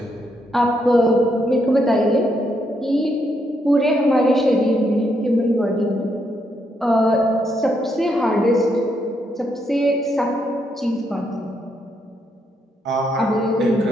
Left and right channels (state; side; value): normal; both; correlation 0.77